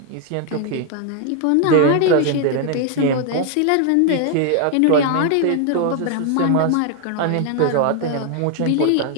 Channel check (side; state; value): both; different; correlation 0.00